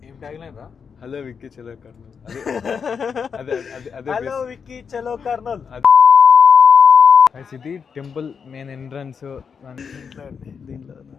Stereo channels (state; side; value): quieter; right; 6.3 dB